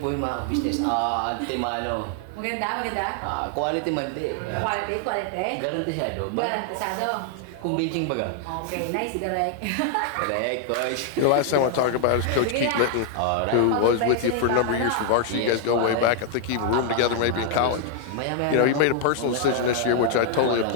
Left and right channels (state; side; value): different; both; correlation 0.00